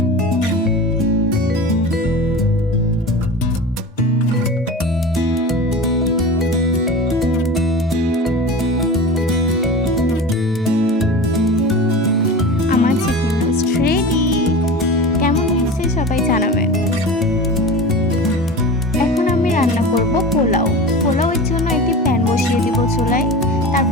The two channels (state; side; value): normal; both; correlation 0.31